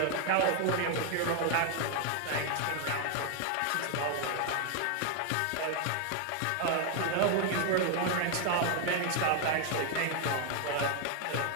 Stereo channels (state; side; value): different; both; correlation 0.01